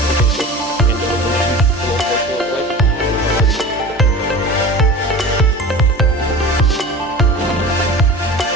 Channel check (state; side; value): normal; both; correlation 0.35